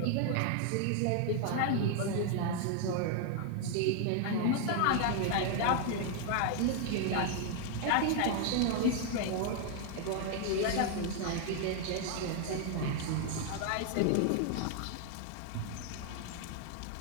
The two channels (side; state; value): both; different; correlation 0.00